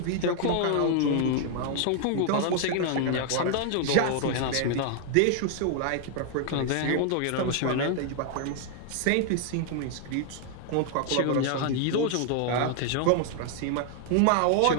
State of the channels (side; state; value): both; different; correlation 0.00